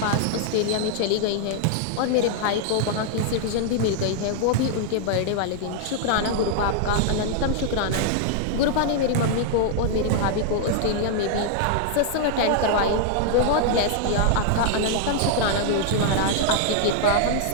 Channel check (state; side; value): different; both; correlation -0.01